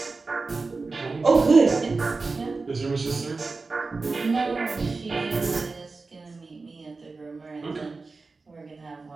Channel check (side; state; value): left; quieter; 3.9 dB